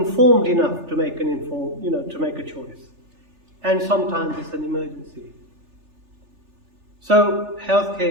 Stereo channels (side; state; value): left; late; 3.4 ms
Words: enough to make to make a choice. And sometimes it's an emergency. So